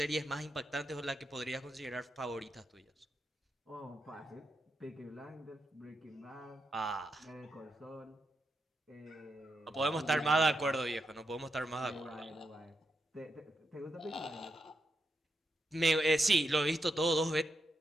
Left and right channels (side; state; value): both; normal; correlation 0.84